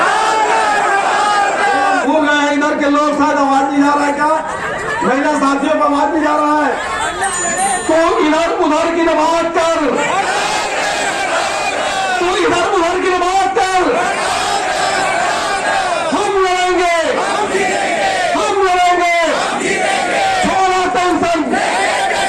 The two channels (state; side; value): identical; both; correlation 1.00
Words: भूल गए इधर के लोग, शायद आवाज नहीं जा रहा है क्या? महिला साथियों को आवाज नहीं जा रहा है। तू इधर उधर की न बात कर, तू इधर उधर की न बात कर। हम लड़ेंगे हम लड़ेंगे, छोड़ो टेंशन